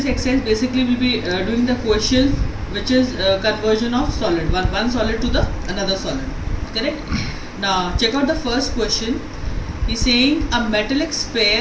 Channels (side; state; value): both; identical; correlation 1.00